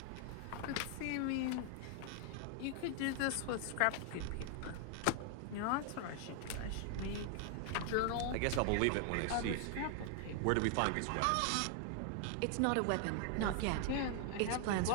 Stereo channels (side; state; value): both; different; correlation 0.00